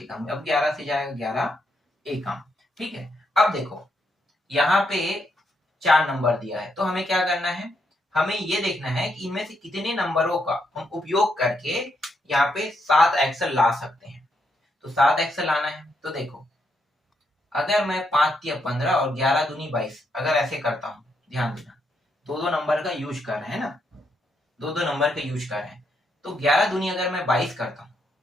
एकम, अब 11 से जाएगा, 11 एकम, ठीक है। अब देखो यहाँ पे 4 नंबर दिया है, तो हमें क्या करना है, हमें ये देखना है कि इनमें से कितने नंबरों का हम उपयोग करके यहाँ पे 7x ला सकते हैं। तो 7x लाना है, तो देखो अगर मैं 5 या 15 और 11 दूनी 22 अगर ऐसे करता हूँ, ध्यान देना, दो नंबर का यूज कर रहे हैं ना, दो नंबर का यूज कर रहे हैं, तो 11 दूनी अगर मैं 22 करता हूँ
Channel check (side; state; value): both; normal; correlation 0.78